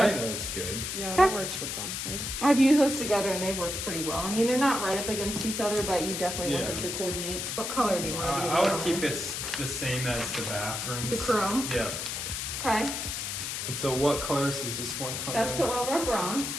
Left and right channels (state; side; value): noise; left; hiss, 4 dB below the sound